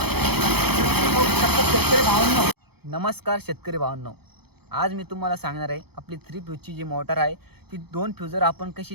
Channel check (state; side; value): late; left; 0.97 ms